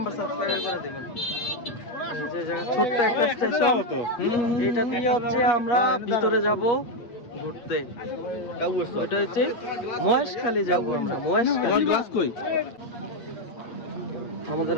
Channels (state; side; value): late; right; 8.5 ms